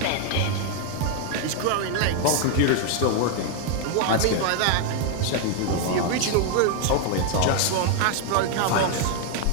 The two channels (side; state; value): both; different; correlation 0.00